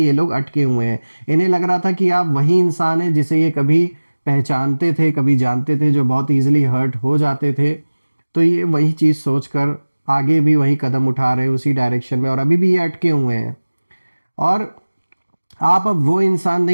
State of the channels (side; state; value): both; inverted; correlation -1.00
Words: लोग अटके हुए हैं। इन्हें लग रहा था कि आप वही इंसान हैं जिसे ये कभी पहचानते थे, कभी जानते थे, जो बहुत इजीली हर्ट हो जाते थे। तो ये वही चीज़ सोचकर आगे भी वही कदम उठा रहे हैं उसी डायरेक्शन में, और अभी भी ये अटके हुए हैं। और आप अब वो इंसान